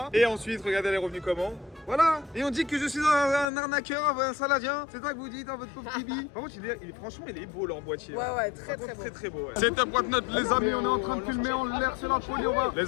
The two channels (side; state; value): right; drops out; at 3.5 s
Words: Et ensuite, regardez, elle est revenue comment? Voilà. Et on dit que je suis un arnaqueur, un saladien. C'est ça que vous dites dans votre pauvre Tibi. Par contre, franchement, il est beau leur boîtier. Ouais, très beau. Très beau. Ouais. C'est un Whatnot, les amis. On est en train de filmer en l'air. C'est la folie.